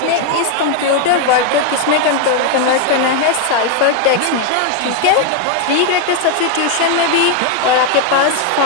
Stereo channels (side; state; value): both; different; correlation 0.01